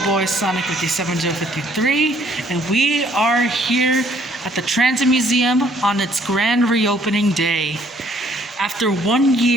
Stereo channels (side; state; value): both; normal; correlation 0.63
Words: boy Sonic 57053, and we are here at the Transit Museum on its grand reopening day. After 1